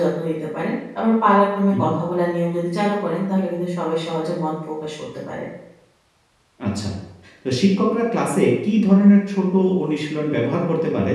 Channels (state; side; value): identical; both; correlation 1.00